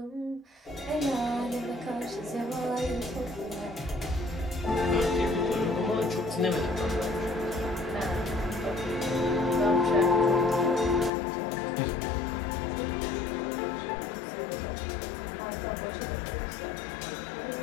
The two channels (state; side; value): drops out; right; at 11.1 s